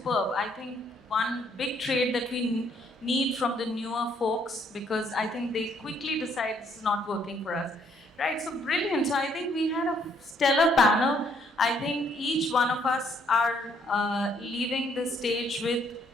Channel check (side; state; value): both; normal; correlation 0.68